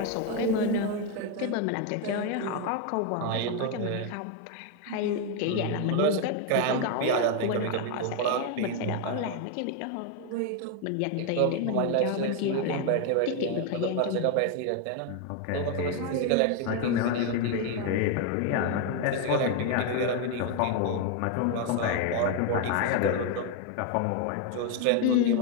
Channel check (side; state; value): both; different; correlation 0.01